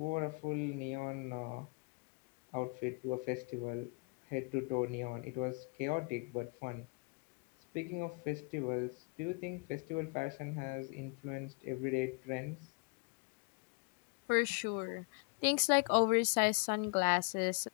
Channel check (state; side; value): quieter; right; 33.4 dB